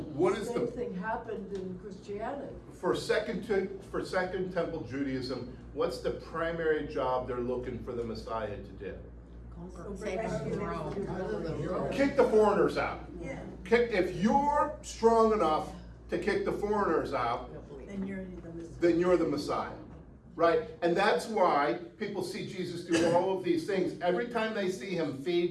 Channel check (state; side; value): identical; both; correlation 1.00